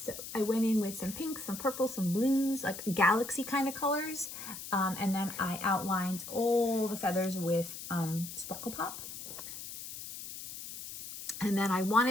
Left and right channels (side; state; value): left; noise; hiss, 10 dB below the sound